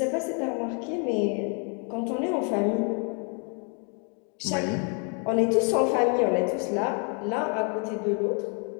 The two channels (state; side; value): quieter; right; 38.9 dB